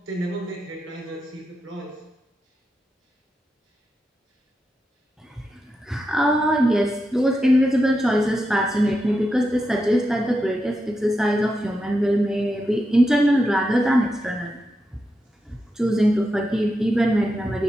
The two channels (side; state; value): both; normal; correlation 0.87